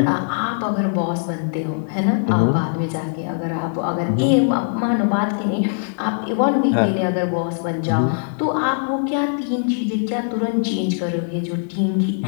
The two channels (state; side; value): silent; right; 65 dB below the other